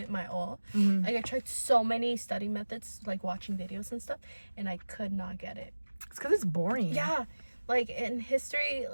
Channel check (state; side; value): inverted; both; correlation -1.00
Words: my all. Like I tried so many study methods, like watching videos and stuff, and I could not get it. It's because it's boring. Yeah, Like in history,